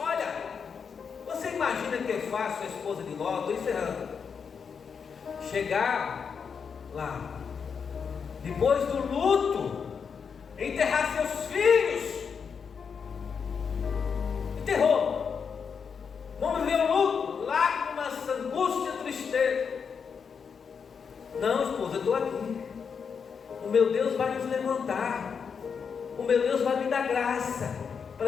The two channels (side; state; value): right; quieter; 6.3 dB